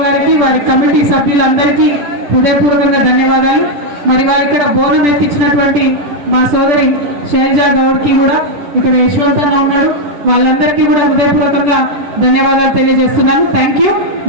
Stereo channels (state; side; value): late; left; 10 ms